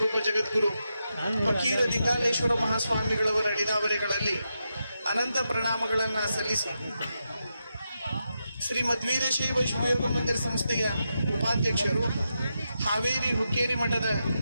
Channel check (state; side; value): inverted; both; correlation -0.86